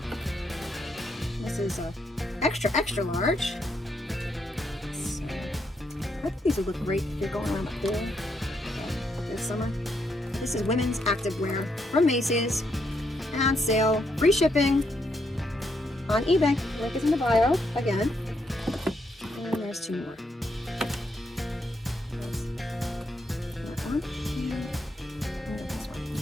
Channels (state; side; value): normal; both; correlation 0.77